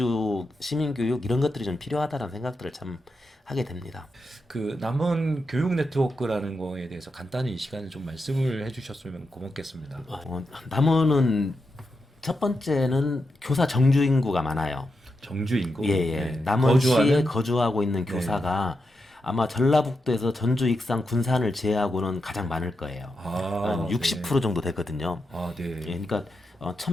시민교육 이런 것들이 좀 필요하다는 생각들을 참 하게 됩니다. 그 남원 교육 네트워크라는 거에 대해서 간단히 이 시간에 좀 말씀을 해주셨으면 고맙겠습니다. 남원은 첫 번째는 교사 정주 인구가 많아요. 정주 인구. 예. 네. 남원시에 거주하고 있는 네. 교사가 아마 전라북도에서 전주, 익산, 군산을 제외하고는 가장 많을 거예요. 한 60% 정도 되거든요. 네. 예, 그러니까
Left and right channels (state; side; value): normal; both; correlation 0.86